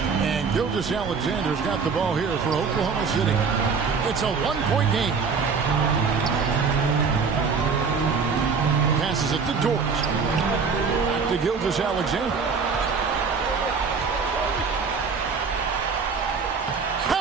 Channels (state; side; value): quieter; left; 5.3 dB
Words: And Gilgeous-Alexander's got the ball here for Oklahoma City. It's a 1-point game. Passes it to Dort. Back to Gilgeous-Alexander.